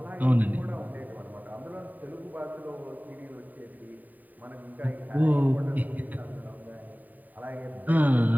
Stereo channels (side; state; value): left; late; 0.084 ms